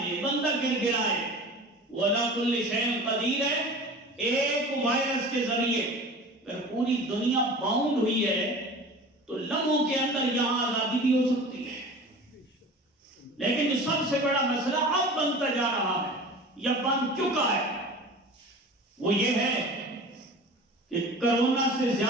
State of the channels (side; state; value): both; normal; correlation 0.38